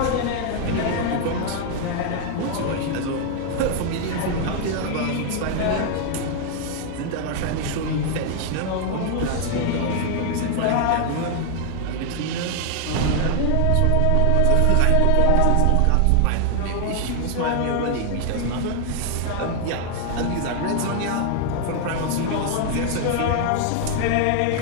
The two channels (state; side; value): different; both; correlation 0.00